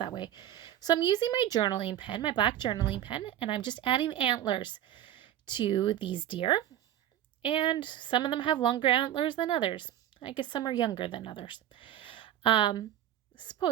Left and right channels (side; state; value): left; quieter; 11.9 dB